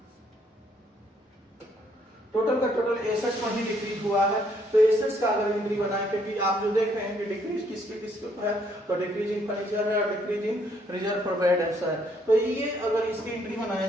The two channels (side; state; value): both; normal; correlation 0.69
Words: टोटल का टोटल एसेट्स पर ही डिक्रीज हुआ है, तो एसेट्स का अगर एंट्री बनाए, क्योंकि आप जो देख रहे हैं कि डिक्रीज किसके है, तो डिक्रीज इन फर्नीचर है और decrease in reserve for bad debts है। तो ये अगर इसकी एंट्री बनाया